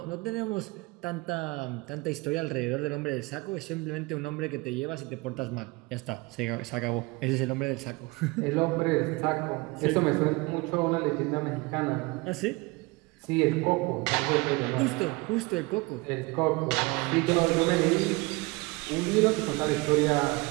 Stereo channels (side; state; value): left; quieter; 24.8 dB